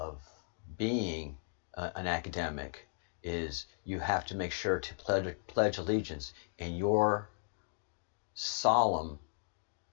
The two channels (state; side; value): silent; right; digital silence